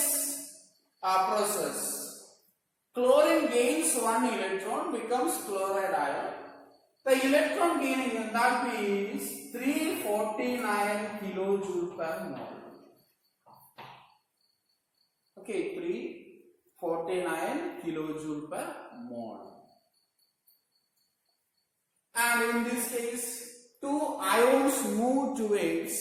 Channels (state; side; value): identical; both; correlation 1.00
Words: process, chlorine gains one electron, becomes chloride ion. The electron gain enthalpy is 349 kilojoule per mole. Okay, 349 kilojoule per mole. And in this case, two ions move